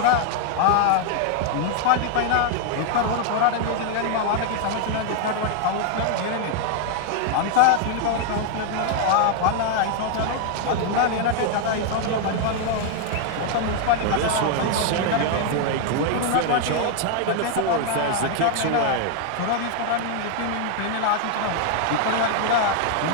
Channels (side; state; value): both; different; correlation 0.00